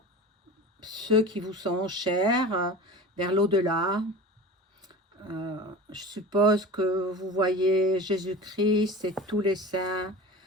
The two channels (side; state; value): both; normal; correlation 0.34